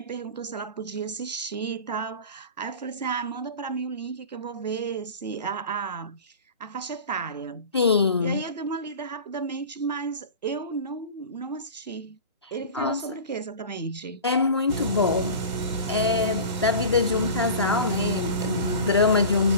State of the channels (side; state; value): both; inverted; correlation -0.35